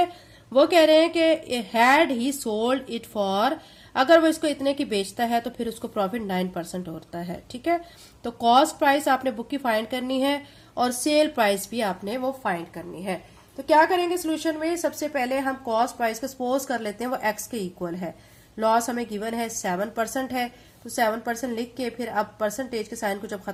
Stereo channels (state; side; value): identical; both; correlation 1.00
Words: वो कह रहे हैं कि had he sold it for, अगर वो इसको इतने की बेचता है तो फिर उसको प्रॉफिट 9% होता है। ठीक है, तो कॉस्ट प्राइस आपने बुक की फाइंड करनी है और सेल प्राइस भी आपने वो फाइंड करनी है। तो क्या करेंगे सोल्यूशन में, सबसे पहले हम कॉस्ट प्राइस को सपोज कर लेते हैं वो एक्स के इक्वल है। लॉस हमें गिवन है 7% है, तो 7% लिख के फिर अब परसेंटेज के साइन को जब